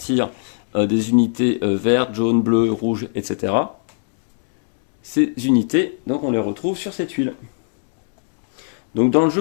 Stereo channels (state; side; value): silent; right; digital silence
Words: des unités vertes, jaunes, bleues, rouges, etc. Ces unités, donc on les retrouve sur cette tuile. Donc dans le jeu,